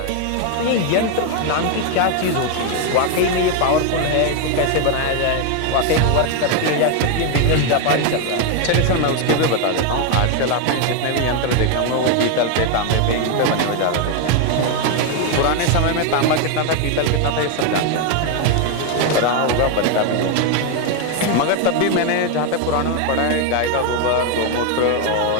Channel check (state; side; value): different; both; correlation 0.01